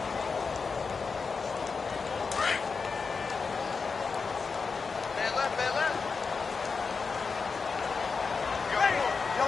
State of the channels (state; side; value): quieter; right; 5.0 dB